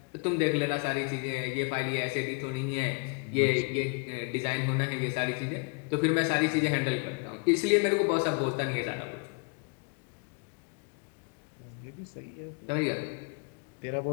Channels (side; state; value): right; quieter; 32.4 dB